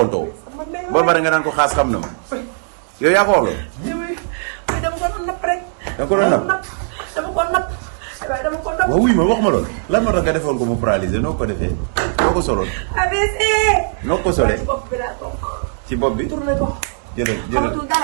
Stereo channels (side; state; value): left; silent; 67 dB below the other